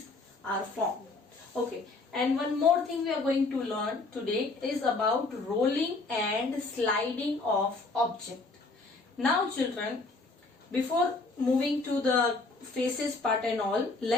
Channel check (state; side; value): quieter; right; 3.5 dB